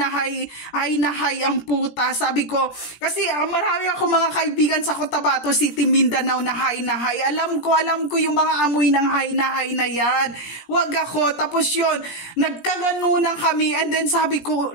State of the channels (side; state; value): right; late; 17 ms